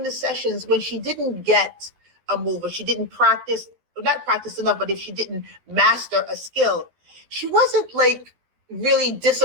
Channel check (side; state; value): left; late; 12 ms